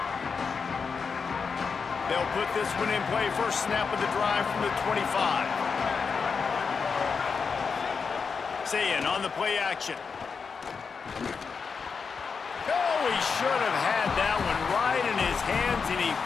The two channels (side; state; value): right; quieter; 5.5 dB